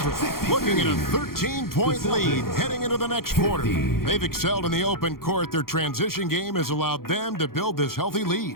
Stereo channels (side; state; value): right; late; 0.93 ms